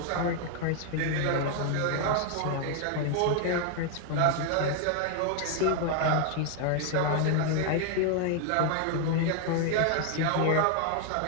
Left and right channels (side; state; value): both; different; correlation 0.00